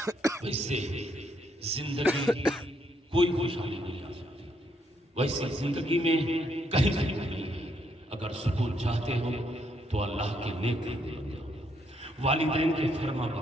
ویسے زندگی کوئی خوشحالی نہیں آ سکتی، ویسے زندگی میں کہیں نہیں ہے. اگر سکون چاہتے ہو تو اللہ کے نیک بندے بن جاؤ، والدین کے فرما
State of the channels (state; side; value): normal; both; correlation 0.73